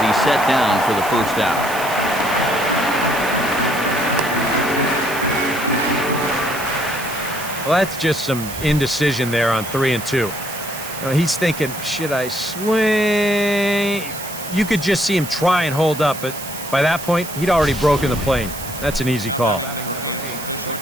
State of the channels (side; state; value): right; noise; hiss, 11 dB below the sound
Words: he's set down for the first out. Well, that's just some indecision there on 3-2. You know, he's thinking, should I swing? You could just see him try and hold up, but by that point, he'd already broken the plane. That's an easy call.